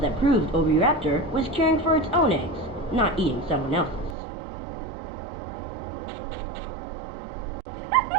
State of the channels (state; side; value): drops out; left; at 4.2 s